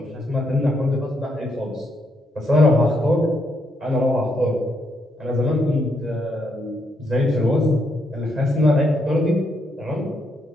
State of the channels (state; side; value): normal; both; correlation 0.77